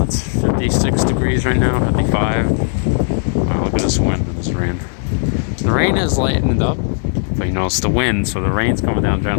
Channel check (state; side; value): silent; right; digital silence